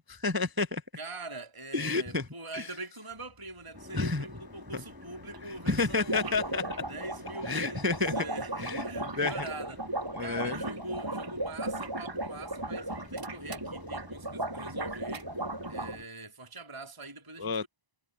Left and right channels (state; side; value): late; left; 1.0 ms